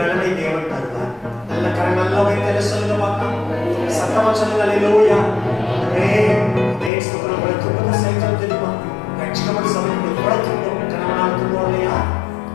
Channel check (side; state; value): right; drops out; at 6.9 s